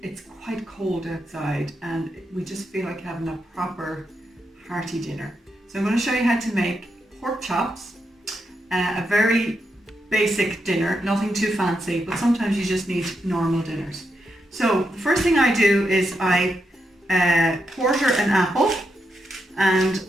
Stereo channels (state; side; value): normal; both; correlation 0.83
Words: it's quite cold outside and we just feel like having a proper hearty dinner. So I'm going to show you how to make pork chops, a very basic dinner, nothing too fancy, but sometimes you just need normal dinners. So the first thing I do is I quarter an apple and